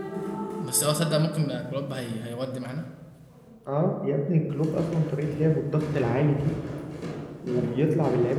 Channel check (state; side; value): identical; both; correlation 1.00